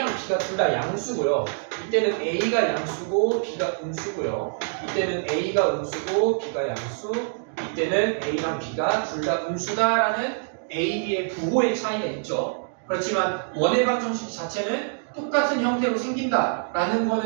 B가 둘 다 양수고요. 이때는 A가 양수고 B가 음수고요. 이때는 A가 음수고 B가 양수. 이때는 A랑 B가 둘 다 음수다라는 A, B의 부호의 차이가 있죠. 그렇지만 원의 방정식 자체는 똑같은 형태로 생긴다라는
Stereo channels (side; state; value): left; silent; digital silence